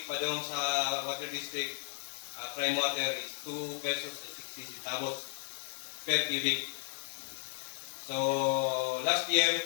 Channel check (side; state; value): right; silent; 55 dB below the other